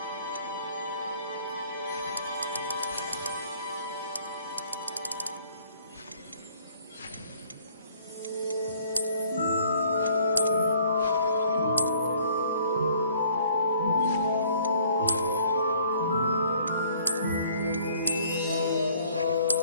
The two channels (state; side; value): inverted; both; correlation -0.58